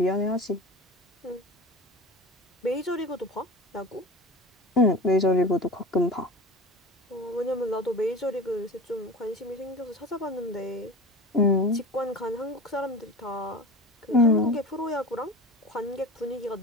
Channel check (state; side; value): normal; both; correlation 0.34